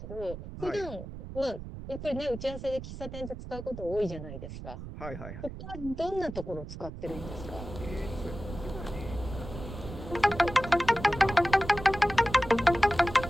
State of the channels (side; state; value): right; noise; rumble, 10 dB below the sound